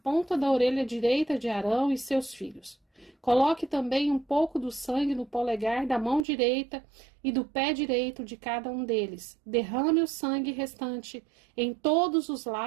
da orelha direita de Arão e seus filhos. Coloque também um pouco do sangue no polegar da mão direita e do pé direito de cada um deles. Derrame o sangue restante em todos os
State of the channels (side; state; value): left; drops out; at 6.2 s